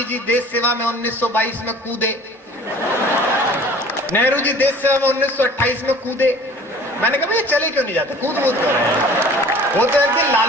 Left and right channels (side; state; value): both; normal; correlation 0.47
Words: जी देश सेवा में 1922 में कूदे, नेहरू जी देश सेवा में 1928 में कूदे। मैंने कहा ये चले क्यों नहीं जाते, कूद कूद कर रहे हैं। वो तो एक दिन